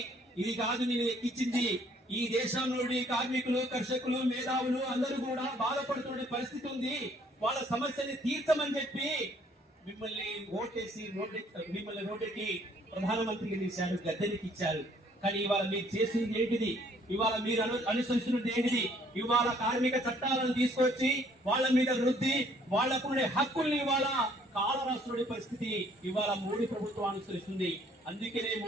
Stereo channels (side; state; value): both; normal; correlation 0.62